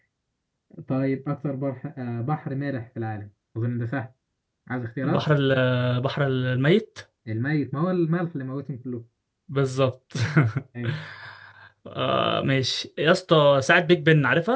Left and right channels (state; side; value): identical; both; correlation 1.00